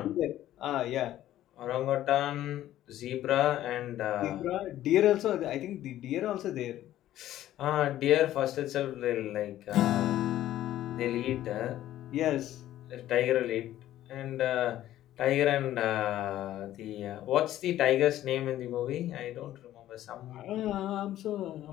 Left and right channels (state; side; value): quieter; right; 13.3 dB